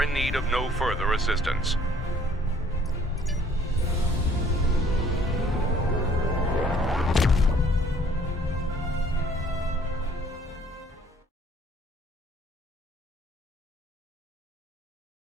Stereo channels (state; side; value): normal; both; correlation 0.59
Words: in need of no further assistance.